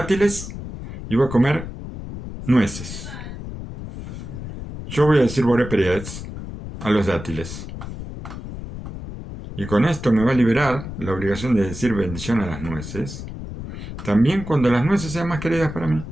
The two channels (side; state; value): left; noise; rumble, 10 dB below the sound